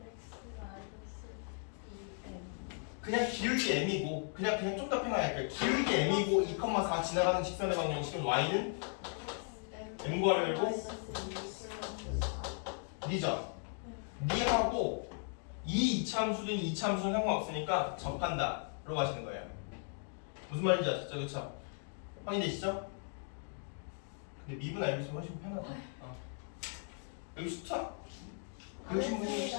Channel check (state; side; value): silent; right; 53 dB below the other